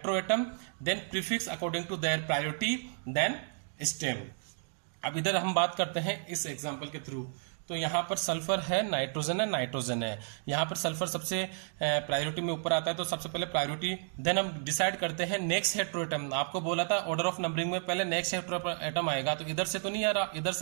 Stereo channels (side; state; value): left; silent; 56 dB below the other